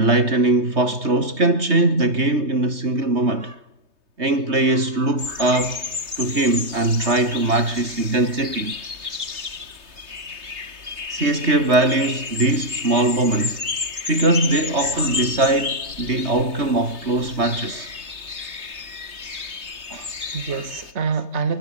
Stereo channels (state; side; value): late; left; 3.2 ms